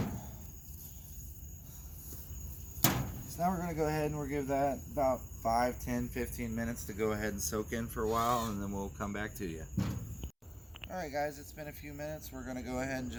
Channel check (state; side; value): identical; both; correlation 1.00